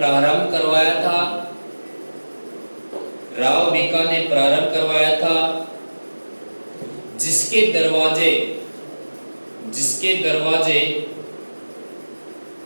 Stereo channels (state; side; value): inverted; both; correlation -1.00